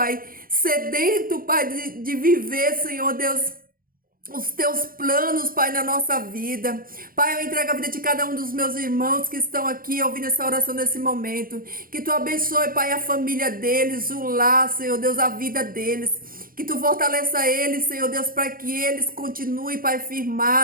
sedento, Pai, de viver, Senhor Deus, os teus planos, Pai, na nossa vida. Pai, eu entrego a vida de cada um dos meus irmãos que estão aqui ouvindo essa oração nesse momento. Que tu abençoe, Pai, a família deles, o lar, Senhor Deus, a vida deles. Que tu fortaleça eles, Senhor Deus, para que eles continuem, Pai,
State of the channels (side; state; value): left; late; 0.42 ms